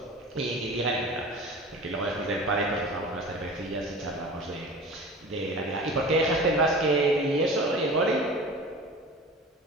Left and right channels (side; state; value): both; normal; correlation 0.37